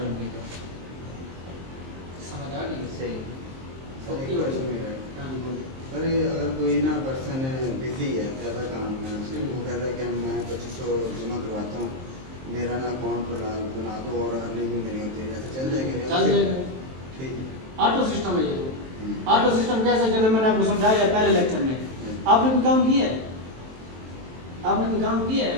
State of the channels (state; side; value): late; left; 23 ms